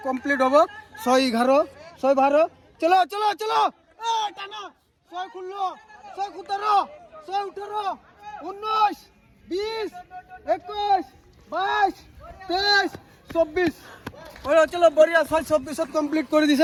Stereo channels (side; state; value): both; identical; correlation 1.00